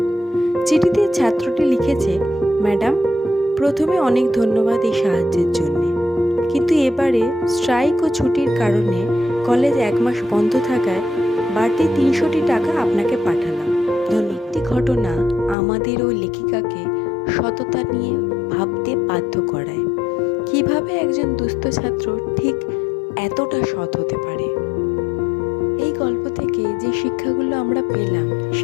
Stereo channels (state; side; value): drops out; right; at 15.6 s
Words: চিঠিতে ছাত্রটি লিখেছে, ম্যাডাম, প্রথমে অনেক ধন্যবাদ এই সাহায্যের জন্যে, কিন্তু এবারে স্ট্রাইক ও ছুটির কারণে কলেজ 1 মাস বন্ধ থাকায় বাড়তি 300টি টাকা আপনাকে পাঠালাম। একটি ঘটনা আমাদের ও লেখিকাকে সততা নিয়ে ভাবতে বাধ্য করায়। কিভাবে একজন দুস্থ ছাত্র ঠিক এতটা সৎ হতে পারে। এই গল্প থেকে যে শিক্ষাগুলো আমরা পেলাম